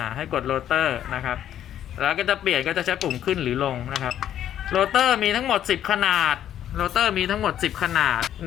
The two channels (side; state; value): right; quieter; 10.8 dB